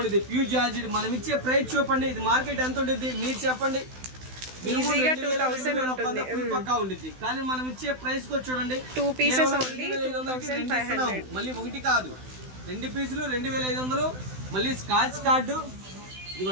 ప్యూర్ జార్జెట్. మనం ఇచ్చే ప్రైస్ చూపండి, ఇది మార్కెట్ ఎంత ఉంటుంది మీరు చెప్పండి. పక్కా ఉండిద్ది, కానీ మనం ఇచ్చే ప్రైస్ కూడా చూడండి, 2 పీసెస్ మళ్ళీ ఒకటి కాదు 2 పీసులు 2500. మళ్ళీ స్కాచ్ కార్డు,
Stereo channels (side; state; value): left; late; 16 ms